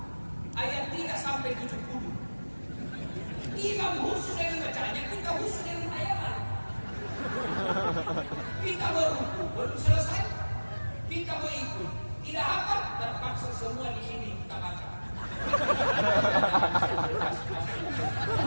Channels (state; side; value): inverted; both; correlation -1.00